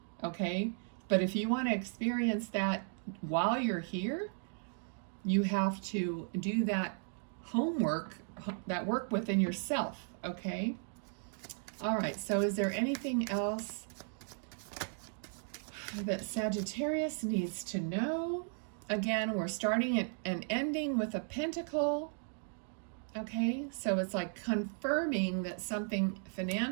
Okay? But if you want to experience that while you're here, you have to do that homework, that work within yourself. Okay? All right, so is there anything else that Sagittarius needs to know? Again, we're starting and ending with a pentacle. Okay, so it's like confirming that something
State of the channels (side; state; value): left; silent; 54 dB below the other